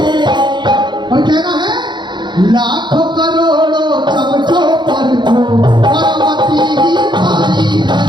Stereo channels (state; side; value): late; left; 0.22 ms